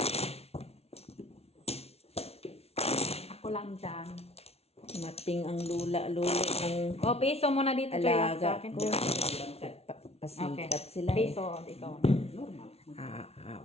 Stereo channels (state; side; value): late; right; 0.30 ms